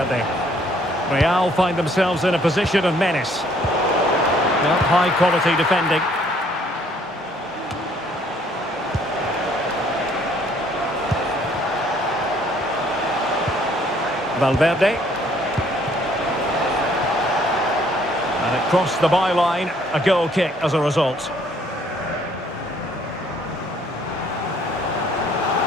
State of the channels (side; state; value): both; normal; correlation 0.62